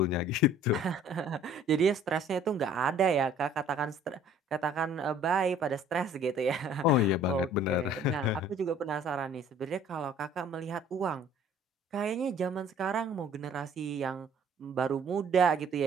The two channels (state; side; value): normal; both; correlation 0.53